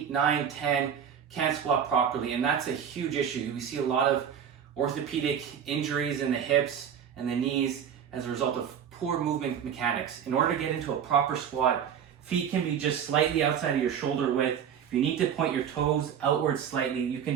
9, 10 can't squat properly, and that's a huge issue. We see a lot of orthopedic injuries in the hips and the knees as a result of poor movement mechanics. In order to get into a proper squat, feet can be just slightly outside of your shoulder width. If you need to point your toes outwards slightly, you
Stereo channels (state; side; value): quieter; left; 8.3 dB